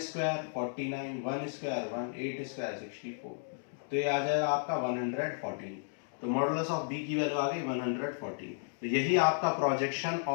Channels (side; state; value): right; silent; digital silence